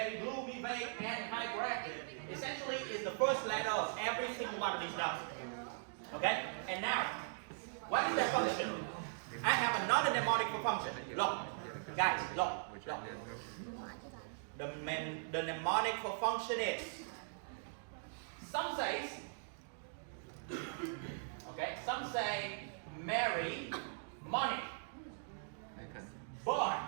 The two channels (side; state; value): left; silent; digital silence